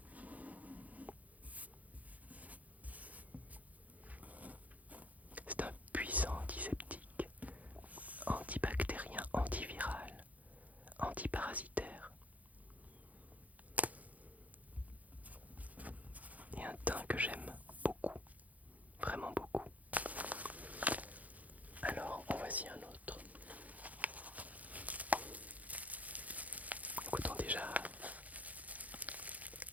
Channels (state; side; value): late; left; 0.075 ms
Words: C'est un puissant antiseptique, antibactérien, antiviral, antiparasitaire. Et un thym que j'aime beaucoup, vraiment beaucoup. Alors, en voici un autre. Écoutons déjà